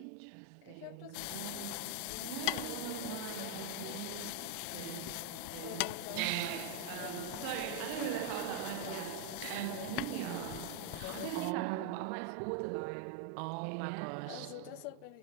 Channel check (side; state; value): both; different; correlation 0.01